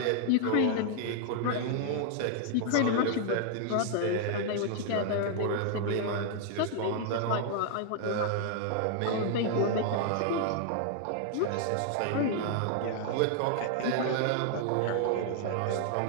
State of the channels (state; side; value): different; both; correlation 0.00